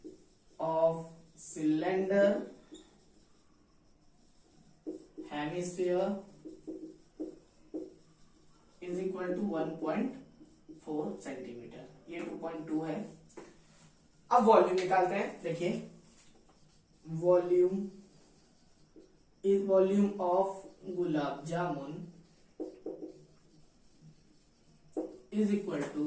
of cylinder hemisphere is equal to 1.4 centimetre, ये 2.2 है। अब वॉल्यूम निकालते हैं। देखिए volume is volume of gulab jamun is equal to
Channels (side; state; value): both; identical; correlation 1.00